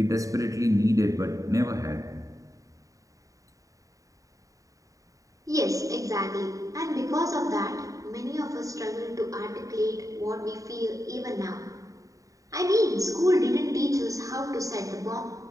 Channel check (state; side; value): late; left; 0.16 ms